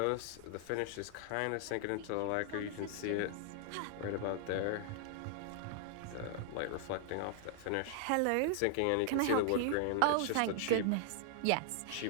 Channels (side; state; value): both; different; correlation 0.00